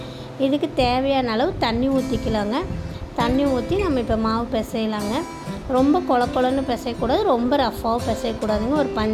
இதுக்கு தேவையான அளவு தண்ணி ஊற்றிக்கலாங்க. தண்ணி ஊற்றி நம்ம இப்போ மாவு பிசையலாங்க. ரொம்ப கொலன்னு பிசையக்கூடாது, ரொம்ப ரஃப்பாகவும் பிசையக்கூடாதுங்க. ஒரு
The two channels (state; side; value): identical; both; correlation 1.00